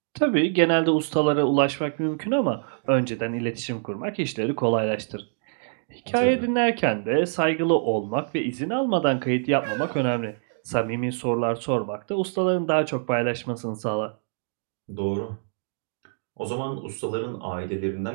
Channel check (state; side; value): silent; left; digital silence